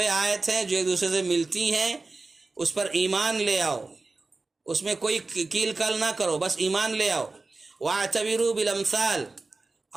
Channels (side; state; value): left; quieter; 3.6 dB